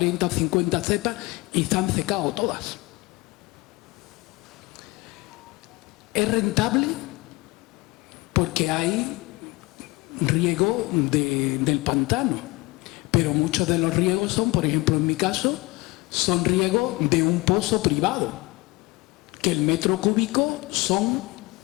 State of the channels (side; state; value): right; quieter; 23.1 dB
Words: o 50 cepas y se han secado todas. ¿Es rentable? Porque hay riego del pantano, pero muchos de los riegos son, por ejemplo en mi caso, son riegos de un pozo privado, que el metro cúbico son